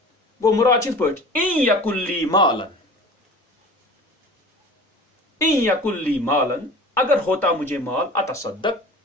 گوٚو مراد چھِ یِتھ پٲٹھۍ ان یکن لی مالن اگر ہوتا مجھے مال اتصدق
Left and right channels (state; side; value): normal; both; correlation 0.40